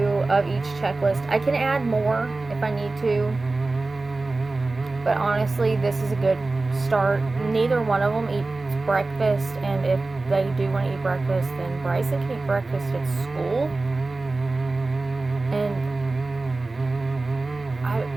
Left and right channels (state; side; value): quieter; left; 3.4 dB